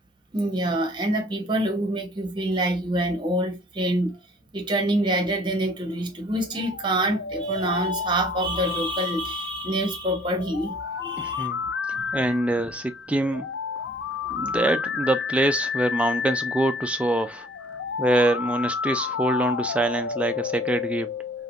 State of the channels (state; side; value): normal; both; correlation 0.55